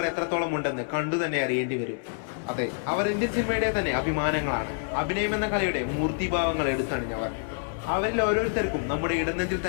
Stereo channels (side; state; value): right; silent; digital silence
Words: എത്രത്തോളം ഉണ്ടെന്ന് കണ്ടു തന്നെ അറിയേണ്ടി വരും. അതെ, അവർ ഇന്ത്യൻ സിനിമയുടെ തന്നെ അഭിമാനങ്ങളാണ്. അഭിനയം എന്ന കലയുടെ മൂർത്തിഭാവങ്ങൾ എടുത്തണിഞ്ഞവർ. അവരിൽ ഓരോരുത്തർക്കും നമ്മുടെ ഇടനെഞ്ചിൽ